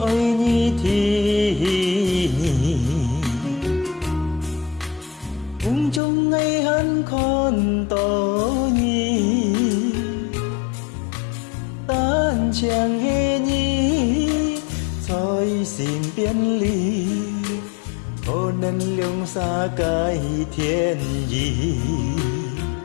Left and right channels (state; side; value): drops out; right; at 6.0 s